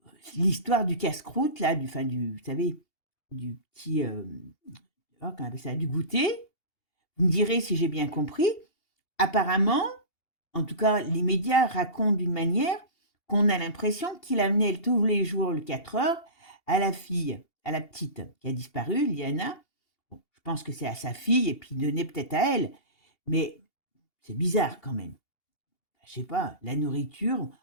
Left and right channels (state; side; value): late; right; 2.8 ms